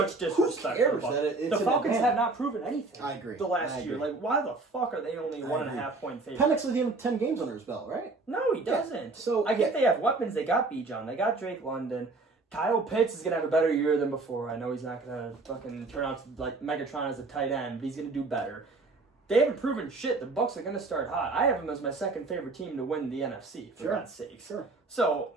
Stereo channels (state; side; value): quieter; left; 3.5 dB